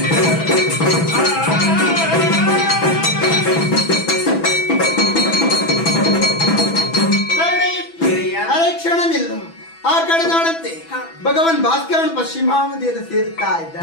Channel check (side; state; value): right; late; 6.1 ms